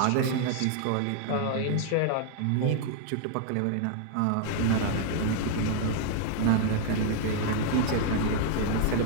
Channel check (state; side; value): different; both; correlation -0.01